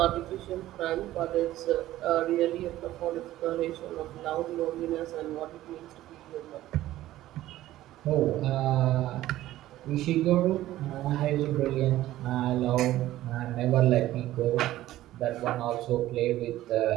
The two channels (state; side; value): quieter; left; 14.8 dB